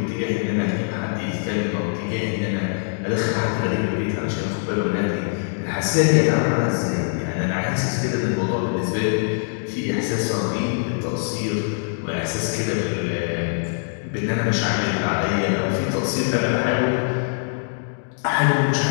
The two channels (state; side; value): silent; right; digital silence